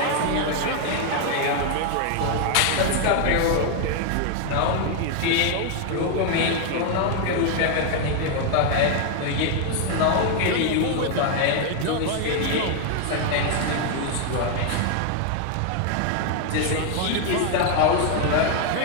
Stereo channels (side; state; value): both; different; correlation 0.00